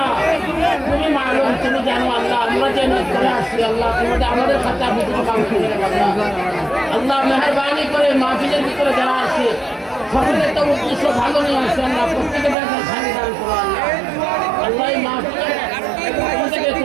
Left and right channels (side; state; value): left; drops out; at 12.6 s